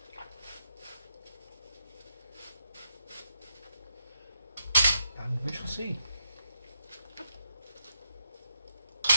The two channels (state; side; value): inverted; both; correlation -0.80